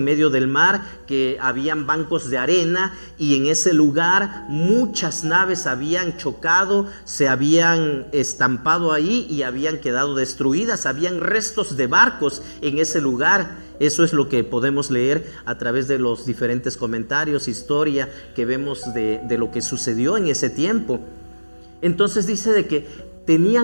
medio del mar, que habían bancos de arena, y en ese lugar muchas naves habían chocado, se habían estampado ahí y habían quedado destruidas. Habían restos de barcos en ese lugar. Eso es lo que podemos leer a través de los diferentes comentarios, historia que vemos de lo que sucedió en ese tiempo. Entonces dice de que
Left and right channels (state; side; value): inverted; both; correlation -1.00